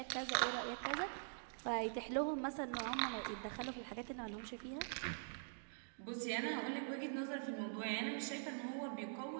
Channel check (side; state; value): left; silent; digital silence